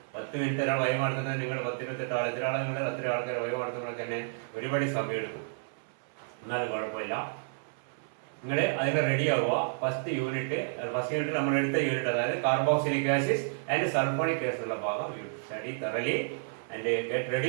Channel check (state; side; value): silent; left; 55 dB below the other